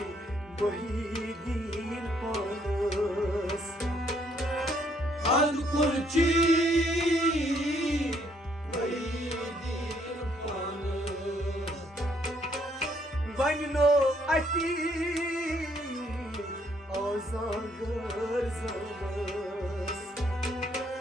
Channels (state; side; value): normal; both; correlation 0.69